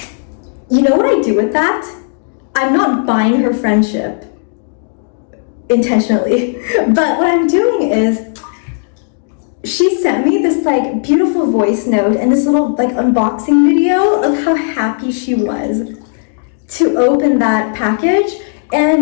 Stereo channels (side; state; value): right; silent; digital silence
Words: you know what I do with that? I'm not buying her friendship intentionally. But what I'm doing is, she sent me this like beautiful voice note and this little like unboxing video of how happy she was to open that package.